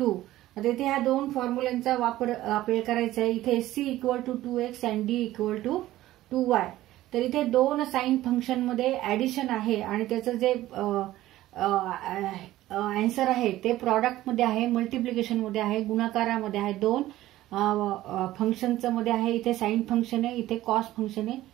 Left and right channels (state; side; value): quieter; left; 15.3 dB